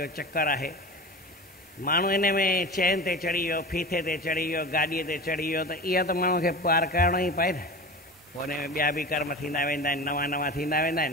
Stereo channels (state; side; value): normal; both; correlation 0.31